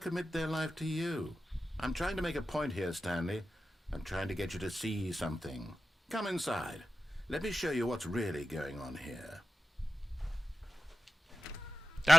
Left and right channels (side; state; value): both; normal; correlation 0.93